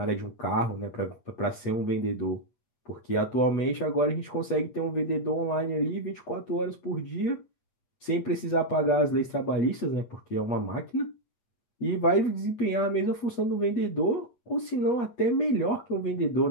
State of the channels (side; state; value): right; late; 8.3 ms